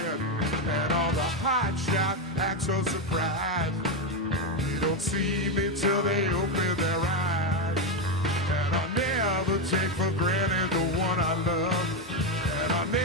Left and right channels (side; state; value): both; normal; correlation 0.08